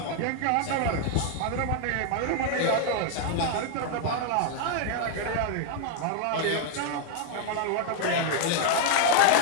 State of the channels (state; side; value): different; both; correlation 0.00